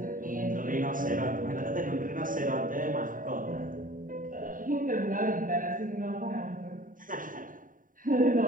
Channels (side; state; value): left; late; 0.39 ms